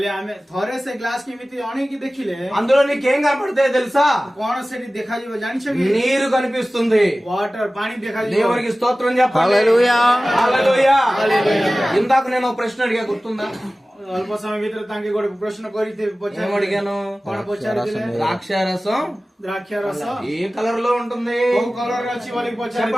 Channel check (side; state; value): both; normal; correlation 0.97